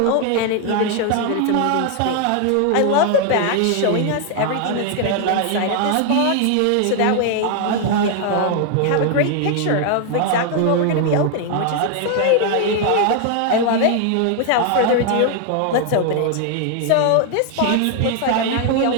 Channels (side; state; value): both; different; correlation 0.00